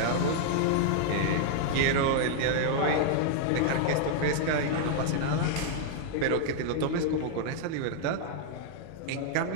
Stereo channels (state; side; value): different; both; correlation -0.01